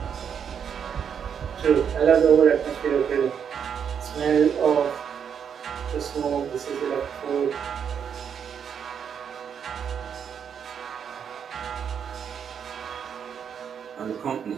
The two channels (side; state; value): left; quieter; 7.7 dB